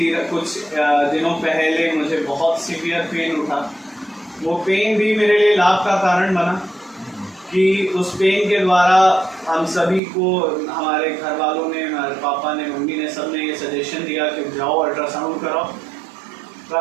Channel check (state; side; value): drops out; left; at 10.0 s